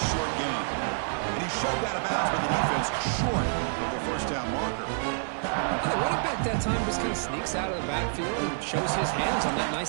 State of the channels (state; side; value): silent; left; digital silence